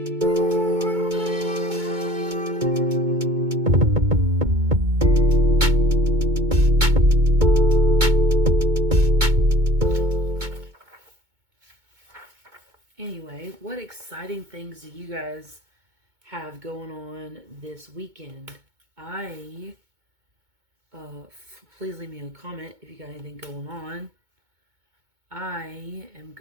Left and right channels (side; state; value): left; late; 2.2 ms